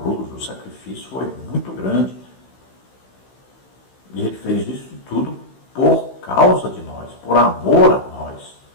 o sacrifício foi muito grande. E ele fez isso tudo por causa de nós, por amor a nós.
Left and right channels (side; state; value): right; late; 16 ms